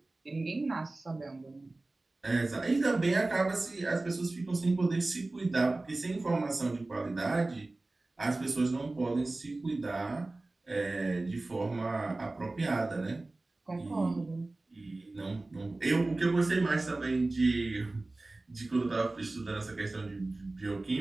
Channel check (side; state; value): left; quieter; 3.0 dB